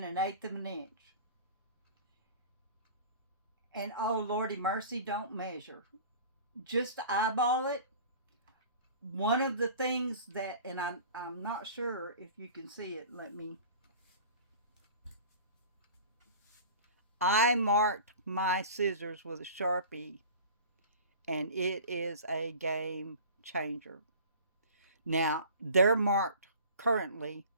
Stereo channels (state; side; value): inverted; both; correlation -0.41